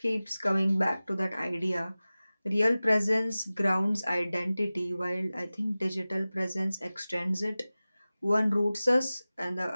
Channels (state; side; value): inverted; both; correlation -0.97